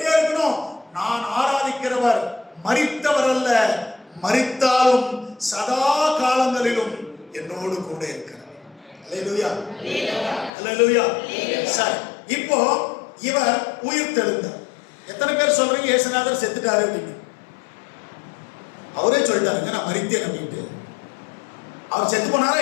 இருக்கணும். நான் ஆராதிக்கிறவர் மரித்தவர் அல்ல, மரித்தாலும் சதா காலங்களிலும் என்னோடு கூட இருக்கிறார். அல்லேலூயா, அல்லேலூயா. சரி, இப்போ இவர் உயிர்த்தெழுந்தார். எத்தனை பேர் சொல்றீங்க இயேசுநாதர் செத்துட்டாரு அப்படின்னு? அவரே சொல்லிட்டாருங்க நான் மரித்தேன் அப்படின்ட்டு. அவர் செத்து போனாரா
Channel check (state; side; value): drops out; right; at 10.5 s